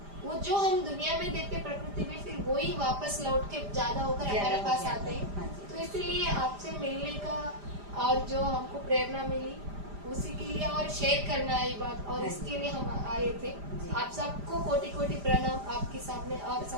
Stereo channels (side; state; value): left; late; 5.0 ms